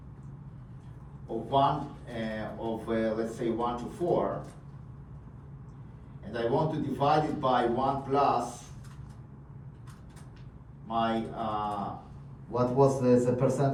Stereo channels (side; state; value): both; identical; correlation 1.00